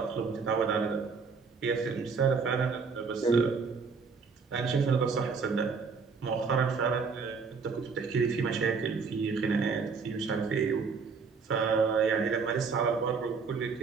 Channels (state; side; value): quieter; left; 5.1 dB